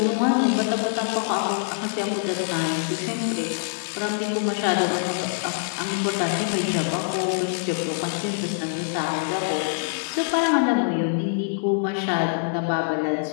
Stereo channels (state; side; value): silent; right; digital silence